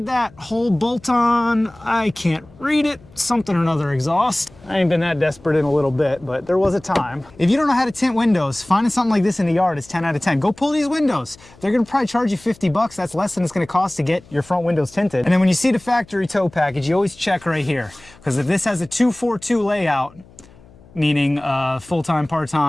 that whole bolt-on. I can't read it. Something or another exhaust. I ain't been that desperate in a little bit, but there was a time. If you don't know how to tint windows, finding something like this in the yard is 10 out of 10. Go pull these windows. They're gonna probably charge you 50 bucks. That's less than it's gonna cost to get your front windows tinted. And then when you see the factory tow package, you always check right here. Because if this has a 242 layout, meaning full-time,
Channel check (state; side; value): noise; left; hum, 25 dB below the sound